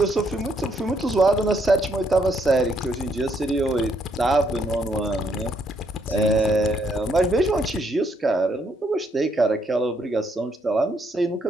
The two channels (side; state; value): both; normal; correlation 0.72